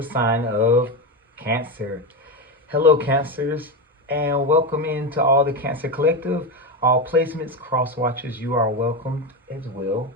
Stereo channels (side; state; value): both; normal; correlation 0.15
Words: sign of Cancer. Hello, Cancers, and welcome into all the Cancer Collective. All placements, cross watchers, you are welcomed as well.